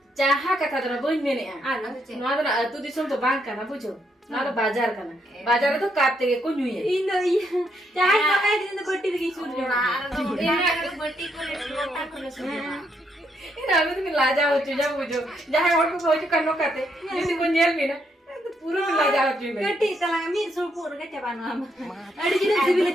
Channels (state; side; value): normal; both; correlation 0.76